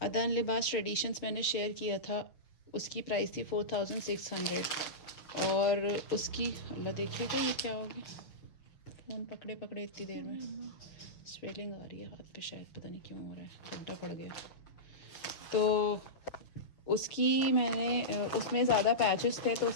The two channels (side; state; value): right; late; 6.5 ms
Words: अदन लिबास ट्रेडिशंस मैंने शेयर किया था, उसकी प्राइस थी 4600 और उसकी, अल्लाह देखिएगा ये क्या हो गया, फ़ोन पकड़े पकड़े इतनी देर में स्वेलिंग आ रही है हाथ पे, शायद पता नहीं क्यों हो रहा है, गड्ढा पड़ गया। तो उसकी मैंने उसमें ज़्यादा पैचेस थे, तो